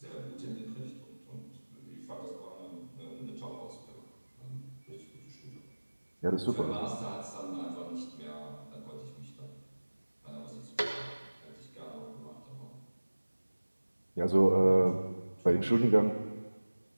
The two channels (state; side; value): inverted; both; correlation -1.00